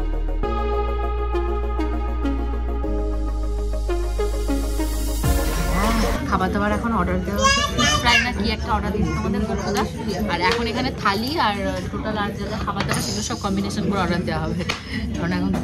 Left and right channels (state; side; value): identical; both; correlation 1.00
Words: খাবার দাবার এখন অর্ডার দেওয়া হচ্ছে, ফিশ ফ্রাই না কি একটা অর্ডার দিয়েছি তোমাদের গোপুদা। আর এখন এখানে থালি আর টোটাল আর যা খাবার দাবার সেগুলো সব কম্বিনেশন করে অর্ডার দেওয়া হবে। কারণ এখন